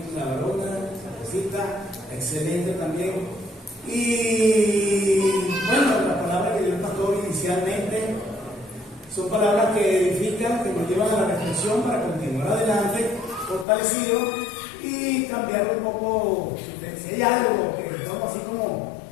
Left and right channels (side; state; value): right; drops out; at 13.7 s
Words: la varona, la cosita, excelente también. Y bueno, las palabras que dio el pastor inicialmente son palabras que edifican, que nos llevan a la reflexión para continuar adelante, fortalecidos y cambiar un poco. Si hay algo que estamos así como,